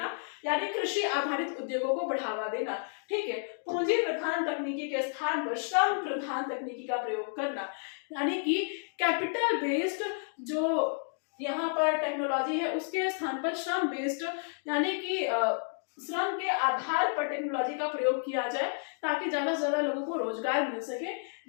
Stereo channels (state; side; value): silent; right; 57 dB below the other